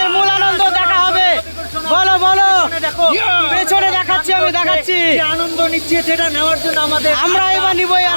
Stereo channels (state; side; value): inverted; both; correlation -1.00